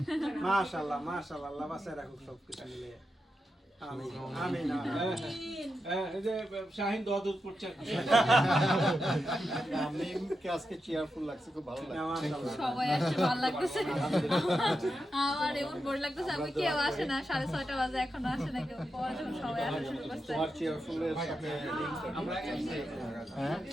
মাশাআল্লাহ মাশাআল্লাহ আল্লাহ বাসায় রাখুক সব কিছু মিলে আমিন আমিন এই যে শাহিন দোয়া দুধ করছে মিমকে আজকে চেয়ারফুল লাগছে খুব ভালো লাগছে সবাই আসছে ভালো লাগতেছে আমার এমন বোর লাগতেছে আমি কেউ আসে না 6:30 বাজে এখনো আসে না কেউ পরে যখন সবাই আসা শুরু করছে তোমার চেয়ারফুলের সাথে হ্যাঁ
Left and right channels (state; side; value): normal; both; correlation 0.88